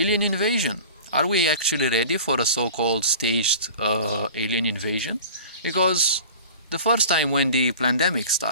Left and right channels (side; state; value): both; inverted; correlation -0.40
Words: invasion. Are we actually ready for a so-called staged alien invasion? Because the first time when the Plandemic